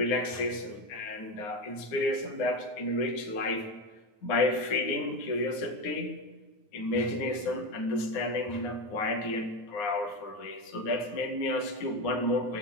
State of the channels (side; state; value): right; late; 9.6 ms